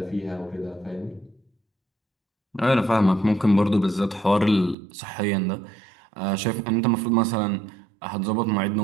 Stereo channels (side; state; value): left; drops out; at 4.8 s